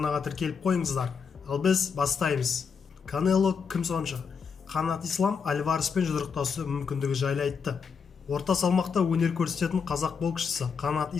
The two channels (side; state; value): right; quieter; 6.0 dB